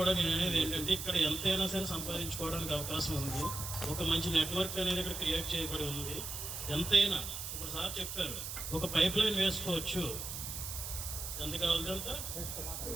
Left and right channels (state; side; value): noise; right; hiss, 6 dB below the sound